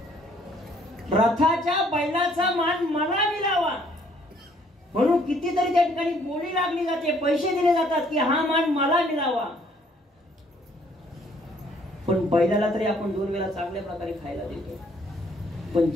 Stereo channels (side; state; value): both; normal; correlation 0.63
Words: रथाच्या बैलाचा मान मला मिळावा म्हणून कितीतरी त्या ठिकाणी बोली लागली जाते, पैसे दिले जातात की हा मान मला मिळावा. पण बैलाला तरी आपण 2 वेळा चांगल्या प्रकारे खायला देतो. पण